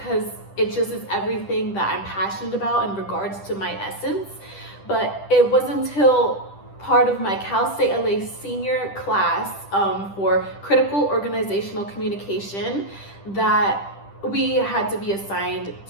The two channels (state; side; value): late; right; 10 ms